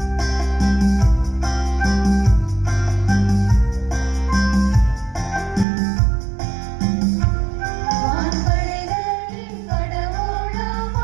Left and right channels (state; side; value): drops out; left; at 5.7 s